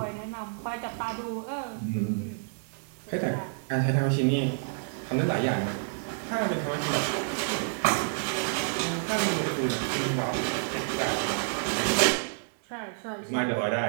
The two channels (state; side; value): silent; left; digital silence